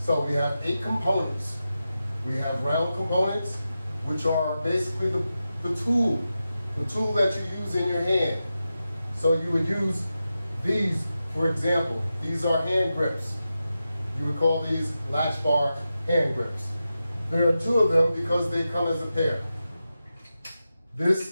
we have 8 components. We have round components, which are basically the tool that you use in your hand. So you would use these, for example. These are hand grips. You would call these Latchbar hand grips. There are 2 of them because they come as a pair.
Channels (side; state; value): both; inverted; correlation -0.91